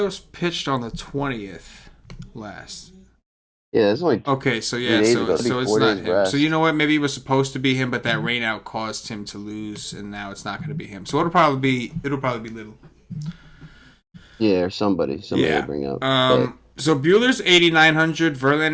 pitched on the 20th last. Yeah, it's only okay. So it's not him. Rest. So you know what? Maybe it was supposed to be him, but that rain out caused him to lose, and now it's not going to be him. So it'll probably be Little. Yeah, or somebody will bring up. So Buehler's 8,900,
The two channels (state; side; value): identical; both; correlation 1.00